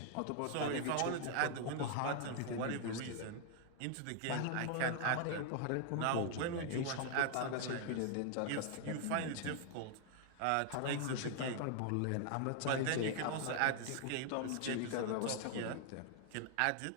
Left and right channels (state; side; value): different; both; correlation 0.00